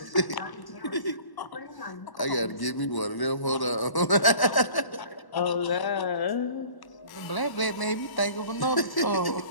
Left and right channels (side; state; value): right; late; 1.1 ms